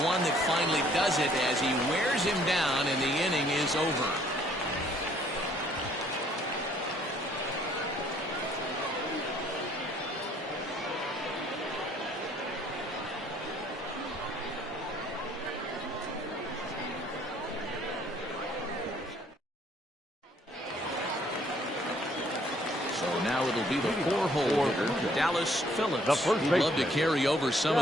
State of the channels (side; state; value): both; normal; correlation 0.63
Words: one that finally does it as he wears him down and the inning is over. Now it'll be the 4-hole hitter, Dallas Phillips, who'd love to carry over some